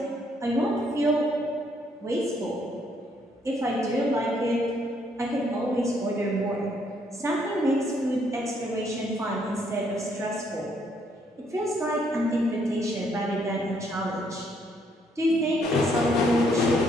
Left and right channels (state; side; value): normal; both; correlation 0.70